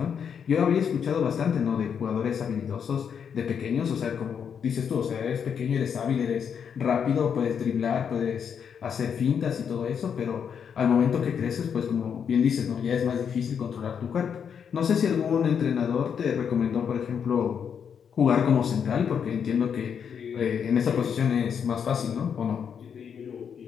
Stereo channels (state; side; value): quieter; right; 7.4 dB